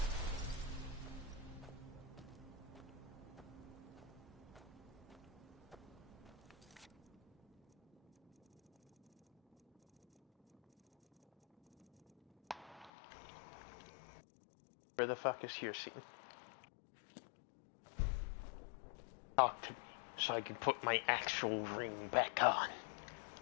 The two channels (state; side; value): drops out; right; at 12.9 s